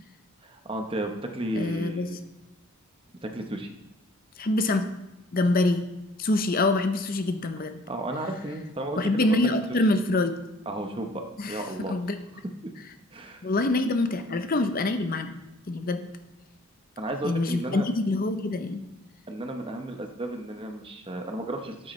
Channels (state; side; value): normal; both; correlation 0.56